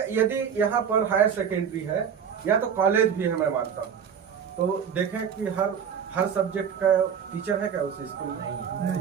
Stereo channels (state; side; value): quieter; left; 7.6 dB